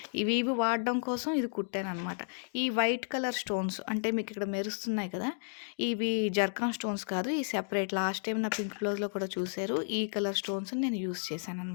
ఇవి వాడడం కోసం ఇది కుట్టాననమాట. ఈ వైట్ కలర్ స్టోన్స్ అంటే మీకిక్కడ మెరుస్తున్నాయి కదా! ఇవి జర్కాన్ స్టోన్స్ కాదు. ఈ సెపరేట్ లాస్ట్ టైమ్ నా పింక్ బ్లౌజ్‌లో కూడా చూసారు. ఈ కలర్ స్టోన్స్‌ని నేను యూజ్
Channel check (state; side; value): silent; right; digital silence